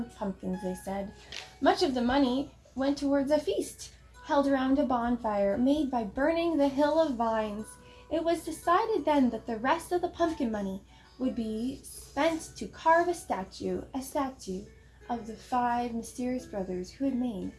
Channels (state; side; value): identical; both; correlation 1.00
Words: pumpkins," they said. Much of the money went towards a feast held around a bonfire made by burning the hill of vines. It was decided then that the rest of the pumpkin money would be spent to carve a statue of the 5 mysterious brothers who had made